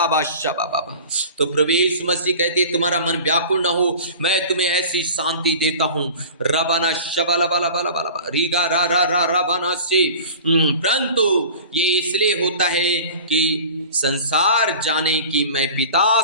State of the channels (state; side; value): inverted; both; correlation -0.40